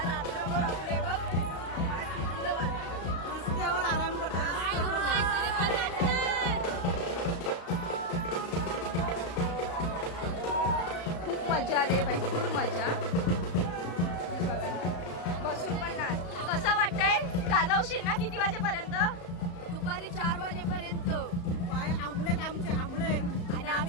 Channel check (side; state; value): right; late; 35 ms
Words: रात्रभर आपले बघ रस्त्यावर आराम करतो. खूप मजा आली बाई, खूप मजा. बसून पण नाच. कसं वाटतंय? गाजवशील ना किती वाजेपर्यंत? दुपारी 4 वाजेपर्यंत. पाय आंबलेत आमचे, आंबले. आणि